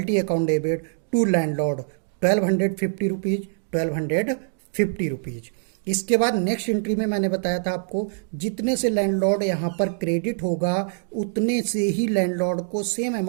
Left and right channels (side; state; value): left; silent; digital silence